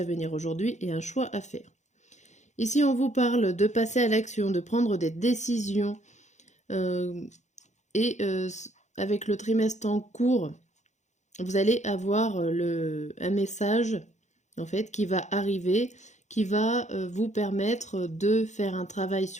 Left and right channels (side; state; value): right; late; 0.34 ms